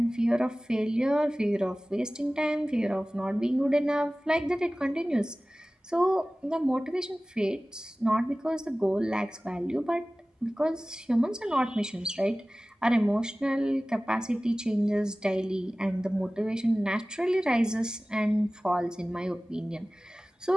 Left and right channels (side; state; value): both; normal; correlation 0.98